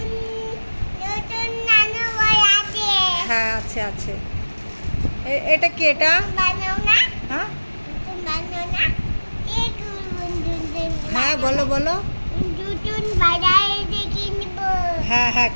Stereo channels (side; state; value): both; inverted; correlation -1.00